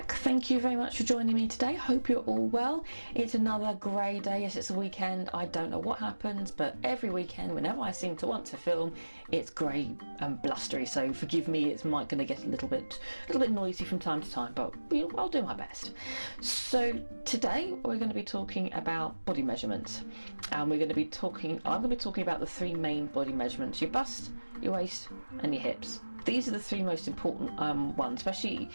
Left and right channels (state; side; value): inverted; both; correlation -1.00